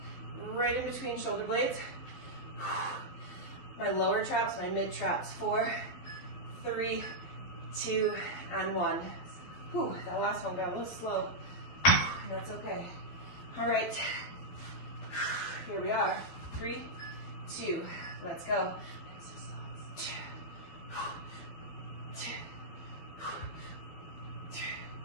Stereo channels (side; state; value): right; late; 12 ms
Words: right in between shoulder blades. My lower traps, my mid traps. 4, 3, 2, and 1. Whew, that last one got a little slow. That's okay. All right, here we are. 3, 2, let's go. 5,